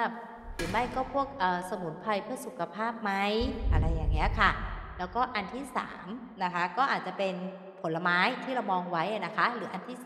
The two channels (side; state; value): both; identical; correlation 1.00